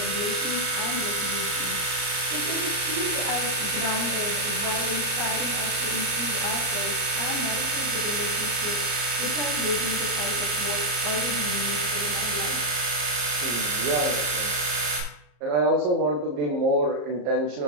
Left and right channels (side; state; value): left; late; 34 ms